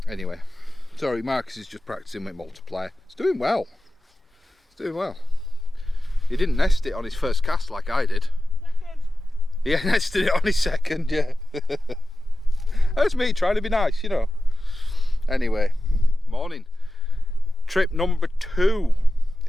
Anyway, sorry, Marcus is just practicing with multiplier. It's doing well. It's doing well. He didn't nest it on his first cast like I did. Second. Yeah, nested it on his second, yeah. That's me trying to be nice, you know. Anyway, morning. Trip number 2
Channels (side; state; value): both; normal; correlation 0.94